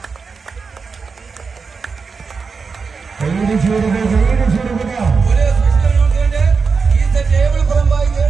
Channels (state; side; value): quieter; left; 5.0 dB